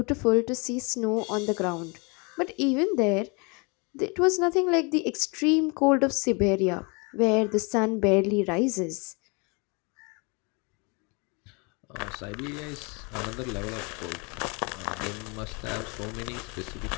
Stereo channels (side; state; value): right; quieter; 31.2 dB